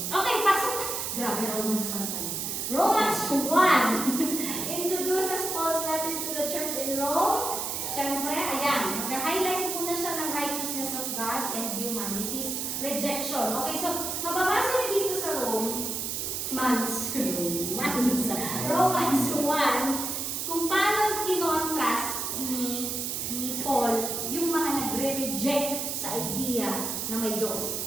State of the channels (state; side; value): noise; right; hiss, 2 dB below the sound